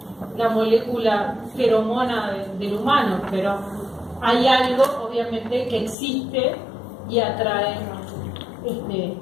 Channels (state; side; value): drops out; right; at 6.0 s